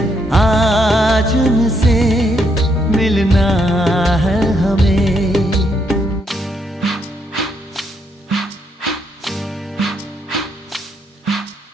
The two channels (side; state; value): both; normal; correlation 0.75